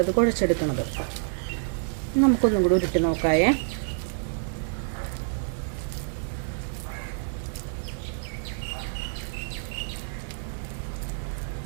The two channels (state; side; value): silent; left; digital silence